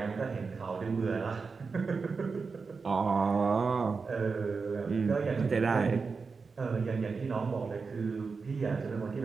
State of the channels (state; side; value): quieter; left; 4.8 dB